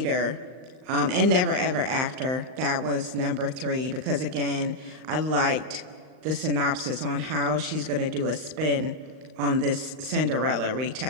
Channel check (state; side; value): late; left; 39 ms